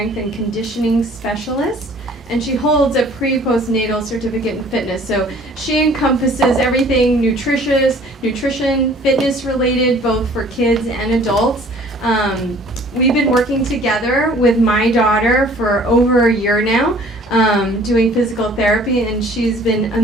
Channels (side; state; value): both; normal; correlation 0.53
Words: and conditioning specialist, and she holds a pre-postnatal certificate in fitness. So she encompasses everything nutrition, fitness related, both for kids and adults. We've been working together with my daughter for over a year now, doing physical therapy, and she's been